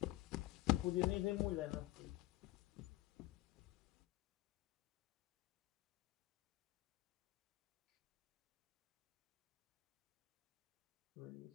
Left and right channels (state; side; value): quieter; right; 17.8 dB